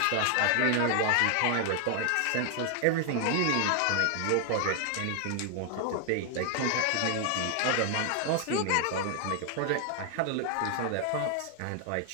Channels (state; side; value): different; both; correlation 0.00